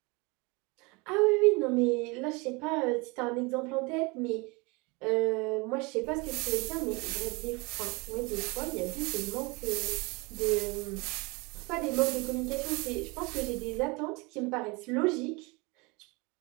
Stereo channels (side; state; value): left; quieter; 27.2 dB